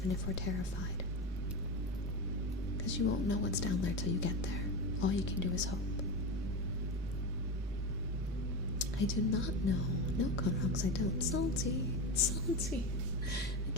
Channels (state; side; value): normal; both; correlation 0.21